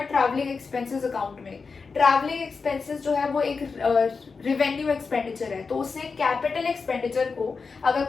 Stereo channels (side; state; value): right; quieter; 4.8 dB